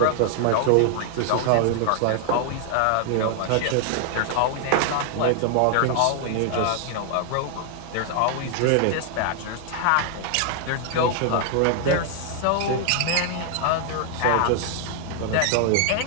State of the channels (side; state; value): both; different; correlation 0.00